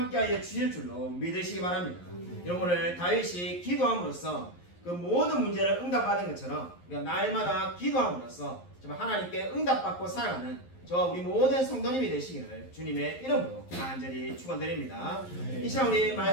주실 줄로 믿으시기 바랍니다. 여러분 오늘 다윗이 기도함으로써 그 모든 문제를 응답받은 것처럼 우리가 날마다 기도함으로써 정말 하나님께 응답받고 살아가는 저와 우리 모든 성도님이 되시기를 주님의 이름으로 간절히 축원드립니다. 이 시간 우리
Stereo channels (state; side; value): late; right; 11 ms